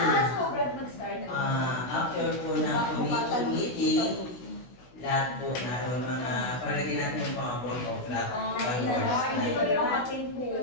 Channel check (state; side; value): late; right; 16 ms